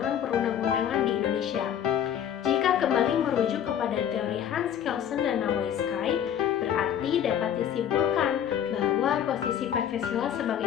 perundang-undangan di Indonesia. Jika kembali merujuk kepada teori Hans Kelsen dan Nawai Sky, berarti dapat disimpulkan bahwa posisi Pancasila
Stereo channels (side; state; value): right; quieter; 9.5 dB